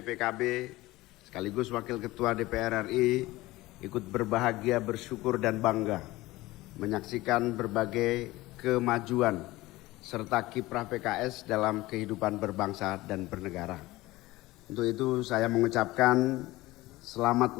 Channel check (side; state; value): right; quieter; 19.0 dB